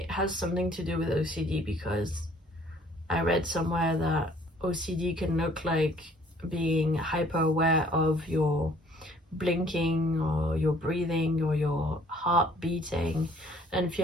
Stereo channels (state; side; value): normal; both; correlation 0.58